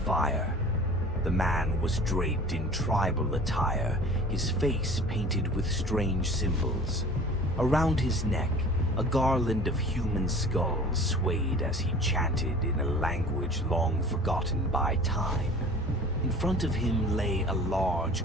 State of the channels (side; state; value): both; normal; correlation 0.44